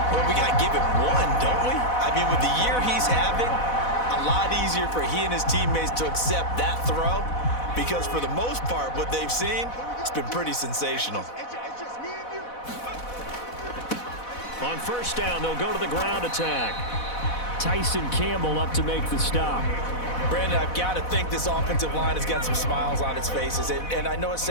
Well, we got to give him one, don't we? I mean, with the year he's having, a lot easier for he and his teammates to accept that throw because for the most part, what they've seen, it's been pretty sensational. On first down, they'll go to the ground attack. Tyson Campbell up to make the stop. Brandon, I've got to think this offensive line has got some smiles on its faces. And I know it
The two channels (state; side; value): late; right; 4.1 ms